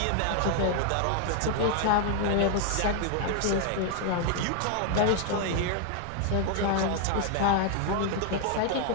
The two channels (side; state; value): both; different; correlation 0.00